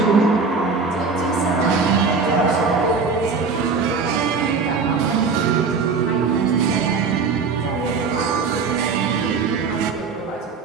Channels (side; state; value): left; quieter; 4.8 dB